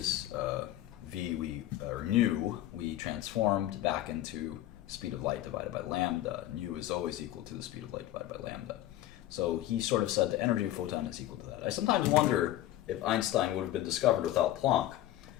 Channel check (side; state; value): right; quieter; 13.9 dB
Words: nu, we transformed back into speed of light divided by lambda. Nu is always equal to the speed of light divided by lambda. So he sort of said the energy of a photon is equal to that. I sometimes wonder if Einstein would have been discovered without Planck.